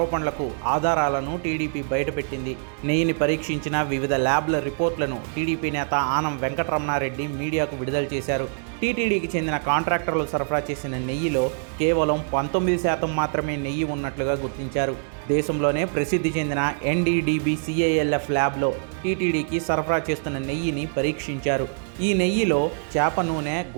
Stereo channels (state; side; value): silent; left; digital silence